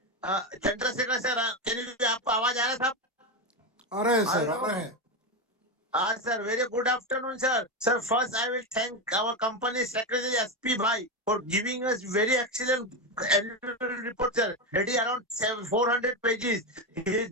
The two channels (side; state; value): both; normal; correlation 0.13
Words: Chandrashekhar sir, can you आपको आवाज आ रहा था? आ रहा है sir, आ रहा है. Sir, very good afternoon, sir. Sir, first I will thank our company secretary SP Bhai for giving us very excellent annual report, sir. It is around 400 pages. He has